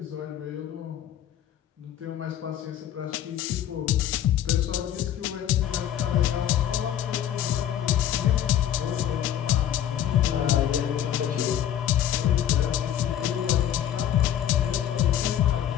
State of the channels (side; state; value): right; quieter; 10.8 dB